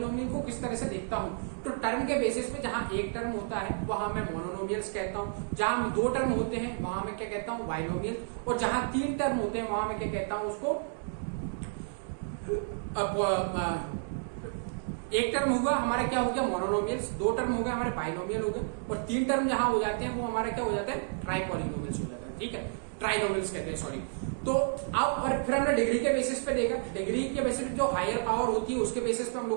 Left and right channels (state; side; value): silent; left; digital silence